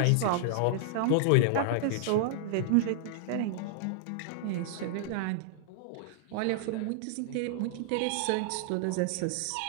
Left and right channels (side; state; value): both; different; correlation -0.01